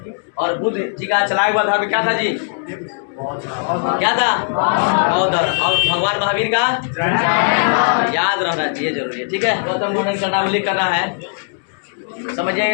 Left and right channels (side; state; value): right; silent; digital silence